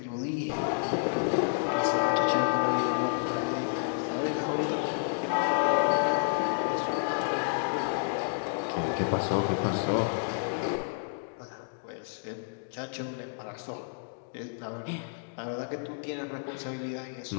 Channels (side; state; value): right; silent; digital silence